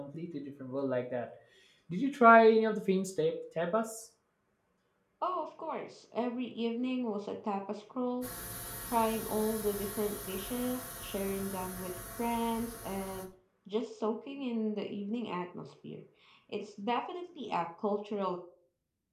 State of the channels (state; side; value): identical; both; correlation 1.00